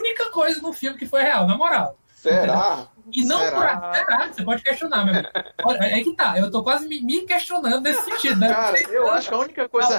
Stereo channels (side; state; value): both; inverted; correlation -1.00